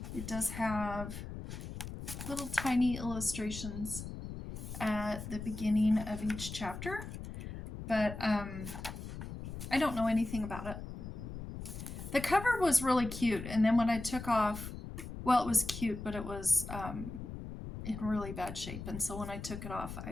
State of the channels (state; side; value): noise; left; rumble, 9 dB below the sound